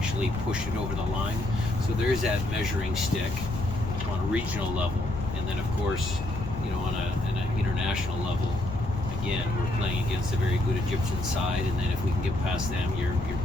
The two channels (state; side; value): noise; left; rumble, 8 dB below the sound